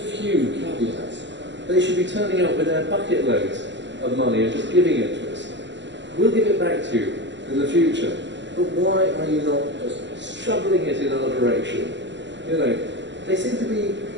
caveats. They should be turning up with their bucket loads of money and just giving it to us. We'll give it back to you in the future. But why are you not just shoveling it in our direction? You know, they seem to be,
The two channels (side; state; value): left; late; 0.52 ms